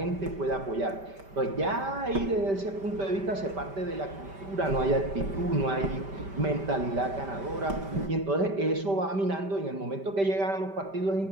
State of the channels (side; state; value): left; late; 5.1 ms